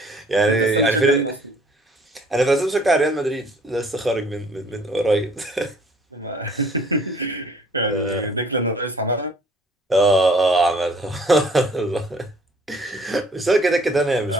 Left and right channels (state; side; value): normal; both; correlation 0.56